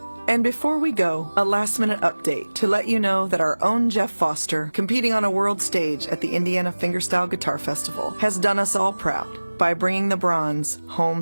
And before we go, a last-minute update to let you know that our own Jeff Foster, competing on a world stage at the Indiana Fingerstyle Guitar Festival, has done us all proud by bringing the bronze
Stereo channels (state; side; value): inverted; both; correlation -1.00